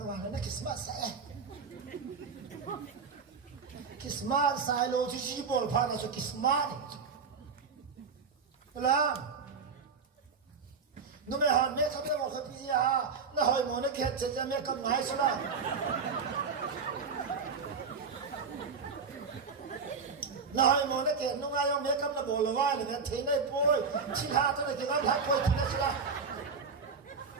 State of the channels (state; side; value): quieter; left; 5.3 dB